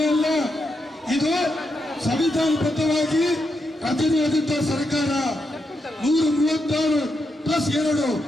ಅಲ್ಲ, ಇದು ಸಂವಿಧಾನಬದ್ಧವಾಗಿ ರಚನೆಯಾದಂತಹ ಸರ್ಕಾರ. 136 ಪ್ಲಸ್ 2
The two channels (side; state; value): both; normal; correlation 0.83